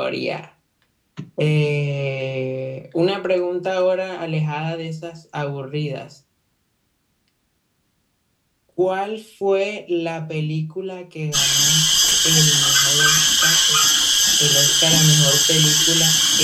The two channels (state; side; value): identical; both; correlation 1.00